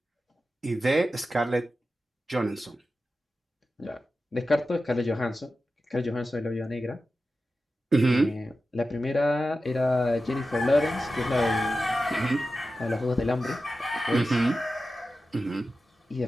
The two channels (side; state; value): both; normal; correlation 0.92